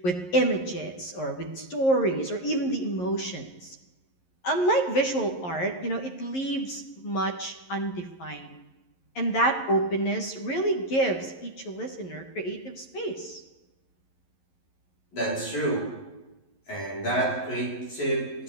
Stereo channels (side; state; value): right; late; 11 ms